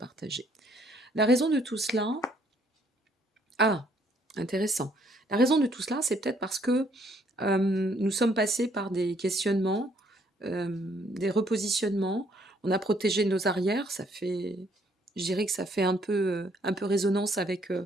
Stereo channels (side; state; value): both; normal; correlation 0.66